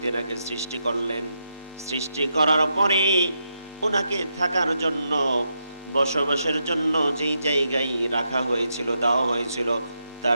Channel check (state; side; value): inverted; both; correlation -0.83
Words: তেনাকে সৃষ্টি করলেন, সৃষ্টি করার পরে ওনাকে থাকার জন্য, বসবাসের জন্য যেই জায়গায় রাখা হয়েছিল, দেওয়া হয়েছিল,